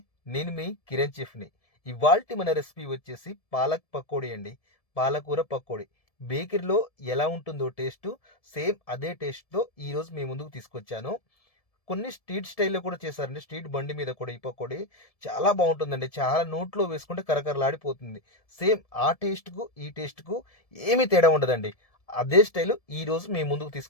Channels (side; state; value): right; late; 1.7 ms